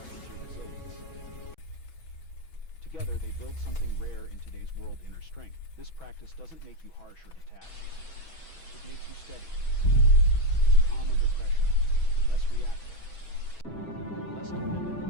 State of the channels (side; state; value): right; late; 6.1 ms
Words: your resilience. Together, they build something rare in today's world: inner strength. This practice doesn't make you harsh or detached. It makes you steady, calm under pressure, less reactive, less dependent